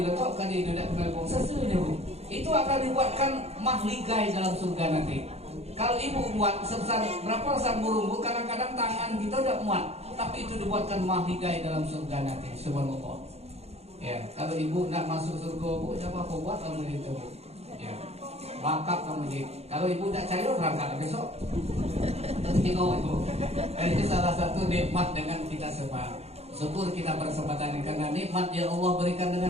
tidak bergabung sesuai Bu. Itu akan dibuatkan mahligai dalam surga nanti. Kalau ibu buat sebesar berapa sarang burung, Bu, kadang-kadang tangan kita tidak muat, tapi itu dibuatkan mahligai dalam surga nanti. Subhanallah. Ya, kalau ibu nak masuk surga, Bu, siapa kau buat kamu itu, Bu? Ya. Wakaf kamu jadi. Kalau ibu tidak cair berangkat besok. Tengok Ibu. Ini salah satu nikmat dengan kita semua. Syukur kita berkesempatan ini karena nikmat yang Allah berikan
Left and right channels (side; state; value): left; late; 0.30 ms